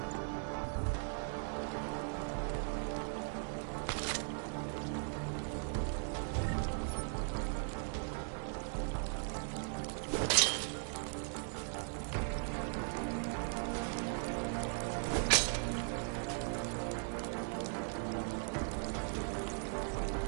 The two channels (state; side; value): silent; left; 52 dB below the other